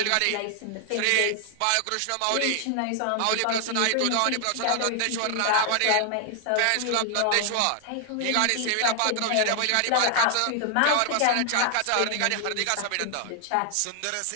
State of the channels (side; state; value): both; different; correlation 0.00